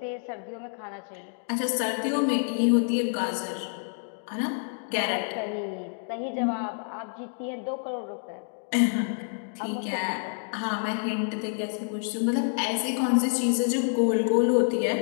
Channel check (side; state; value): right; silent; 59 dB below the other